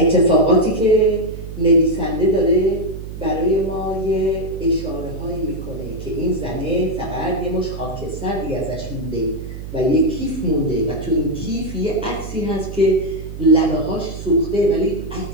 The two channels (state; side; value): noise; right; hum, 10 dB below the sound